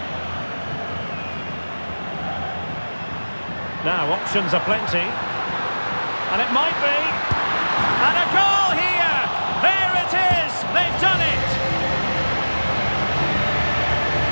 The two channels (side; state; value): both; inverted; correlation -1.00